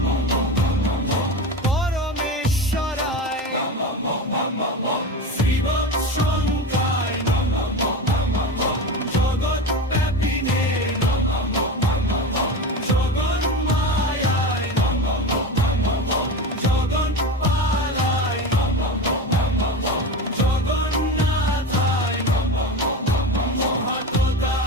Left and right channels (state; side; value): normal; both; correlation 0.25